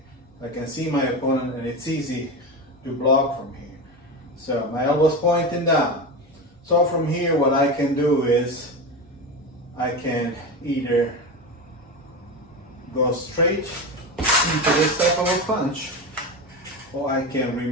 I can see my opponent and it's easy to block from here. So my elbow's pointing down. So from here, what I can do is I can either go straight into this type of a punch, or I can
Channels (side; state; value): both; normal; correlation 0.21